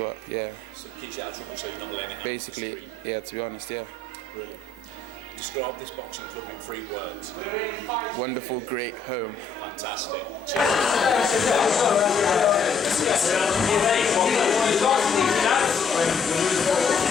Yeah. So it keeps you out of trouble, so you're not letting it happen. Basically, yeah. To be honest, yeah. Brilliant. Describe this boxing club in 3 words. Wonderful, great home. Fantastic.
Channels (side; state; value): right; quieter; 4.2 dB